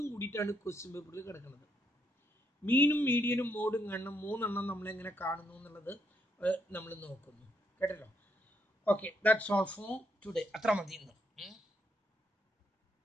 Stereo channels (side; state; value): both; normal; correlation 0.75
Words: കൂടിയിട്ടാണ് ക്വസ്റ്റ്യൻ പേപ്പറിൽ കിടക്കുന്നത്. മീനും മീഡിയനും മോഡും കാണണം. 3 എണ്ണം നമ്മളെങ്ങനെ കാണുന്നു എന്നുള്ളത് നമ്മൾ നോക്കുന്നു. കേട്ടല്ലോ. Okay, that's all for today. അത്ര മതി ഇന്ന്.